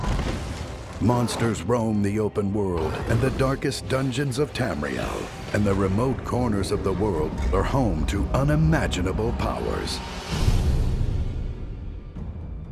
Monsters roam the open world and the darkest dungeons of Tamriel, and the remote corners of the world are home to unimaginable powers.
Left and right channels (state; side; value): identical; both; correlation 1.00